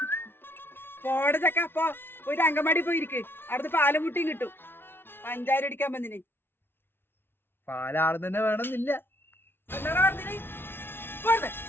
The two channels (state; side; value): late; right; 0.11 ms